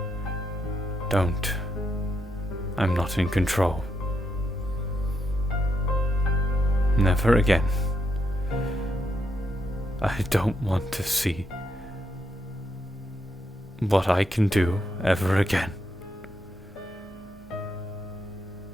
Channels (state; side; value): normal; both; correlation 0.80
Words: don't. I'm not in control. Never again. I don't want to see what I can do ever again.